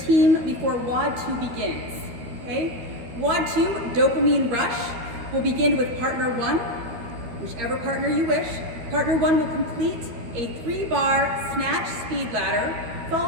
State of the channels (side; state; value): left; late; 12 ms